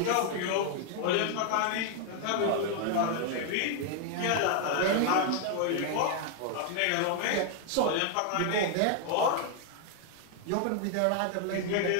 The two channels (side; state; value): both; different; correlation 0.00